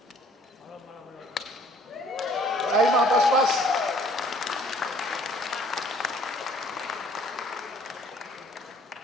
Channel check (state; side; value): normal; both; correlation 0.57